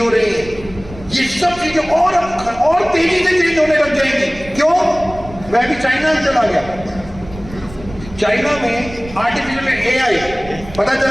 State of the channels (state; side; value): noise; right; rumble, 16 dB below the sound